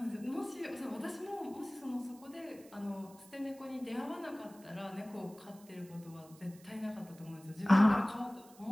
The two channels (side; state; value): right; noise; hiss, 24 dB below the sound